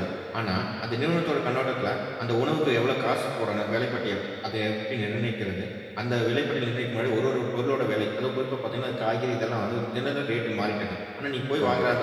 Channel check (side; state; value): both; identical; correlation 1.00